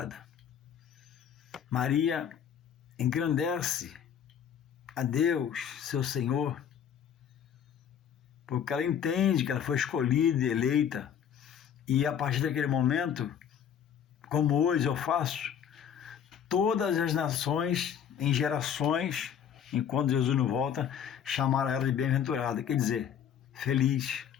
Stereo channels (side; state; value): right; quieter; 8.6 dB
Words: Maria engrandece a Deus, seu Senhor, porque ela entende que ela foi escolhida e eleita, e a partir daquele momento, como hoje eu faço, todas as nações, em gerações, enquanto Jesus não volta, chamaram ela de bem-aventurada, quer dizer, feliz.